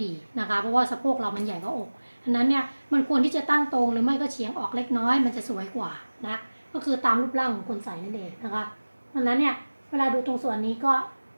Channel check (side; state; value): both; inverted; correlation -1.00